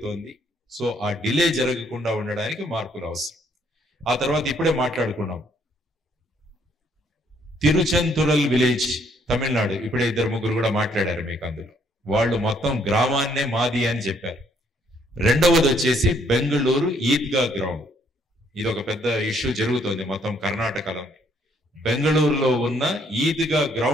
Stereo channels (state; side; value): normal; both; correlation 0.67